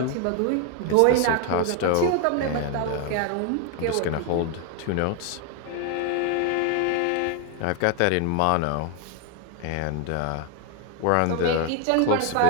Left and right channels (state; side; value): different; both; correlation 0.01